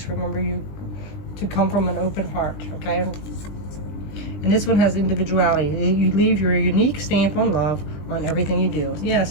remember you to come from an open heart, okay? And this one has individuality. You leave your unique stamp on love on everything you do. Yeah,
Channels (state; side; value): late; right; 20 ms